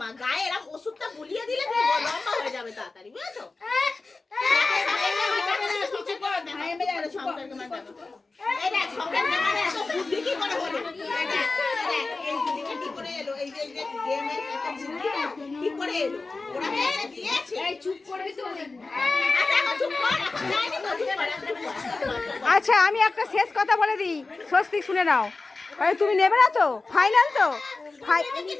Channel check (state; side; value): quieter; right; 3.7 dB